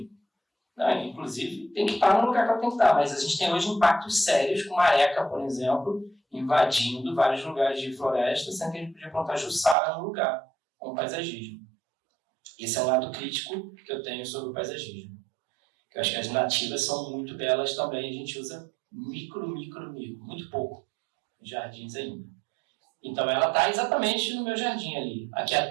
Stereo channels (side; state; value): left; drops out; at 9.8 s